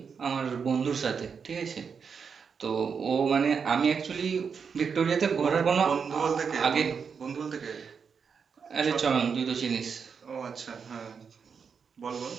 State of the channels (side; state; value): left; quieter; 6.2 dB